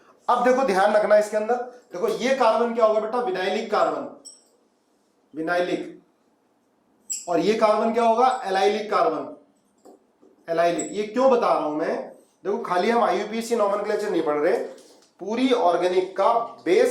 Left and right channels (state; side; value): identical; both; correlation 1.00